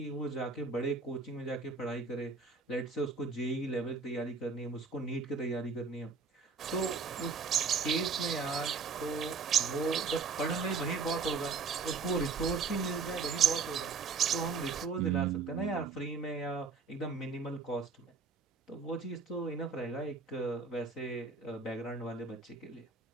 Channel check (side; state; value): left; quieter; 4.7 dB